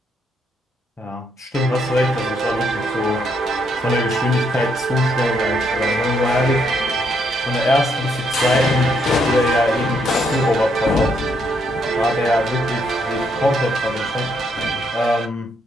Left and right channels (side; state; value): both; normal; correlation 0.74